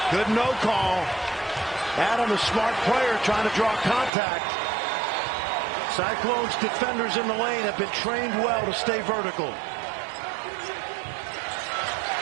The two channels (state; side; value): drops out; left; at 4.1 s